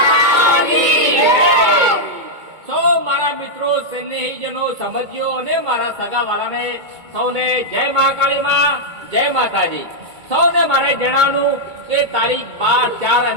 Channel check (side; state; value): left; late; 2.2 ms